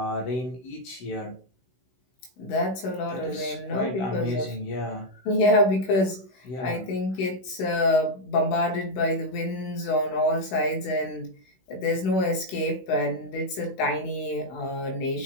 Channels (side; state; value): right; late; 16 ms